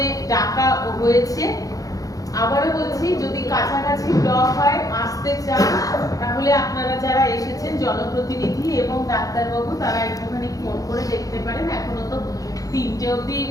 ডাকা হয়েছে। আবারও বলছি, যদি কাছাকাছি ব্লক হয়, আসতে চান, তাহলে আপনারা যারা এসেছেন জনপ্রতিনিধি এবং ডাক্তারবাবু, তারা একটুখানি ফোন করে দেখতে পারেন। এখনো তো 3টে অবধি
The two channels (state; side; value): late; right; 0.17 ms